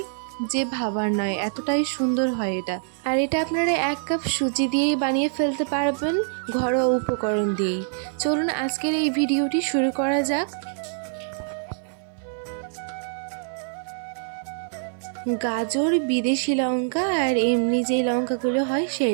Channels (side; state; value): left; silent; 58 dB below the other